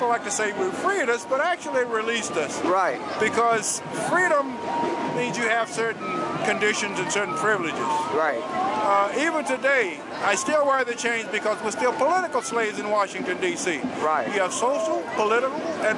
like to say we freed us, but actually it released us. Right. Because freedom means you have certain conditions and certain privileges. Right. Even today, I still wear the chains because we're still political slaves in Washington, D.C. Right. We have social, political, and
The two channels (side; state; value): both; identical; correlation 1.00